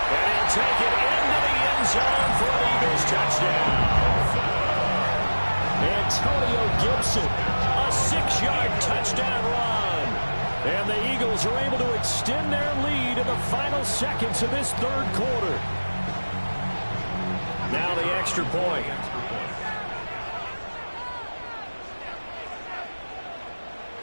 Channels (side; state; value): both; inverted; correlation -1.00